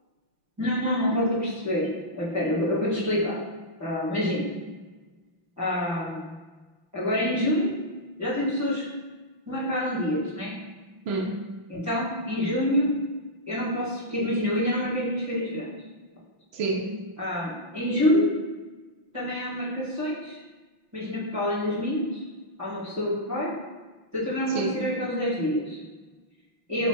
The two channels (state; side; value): late; left; 5.9 ms